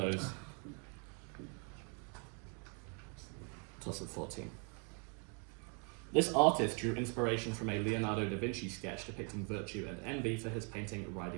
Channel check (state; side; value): quieter; left; 38.2 dB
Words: Toss of 14. This artist drew inspiration from a Leonardo da Vinci sketch depicting virtue and envy for his painting